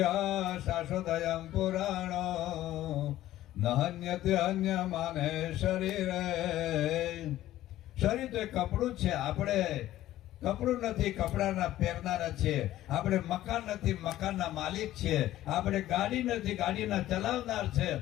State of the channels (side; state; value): right; quieter; 14.2 dB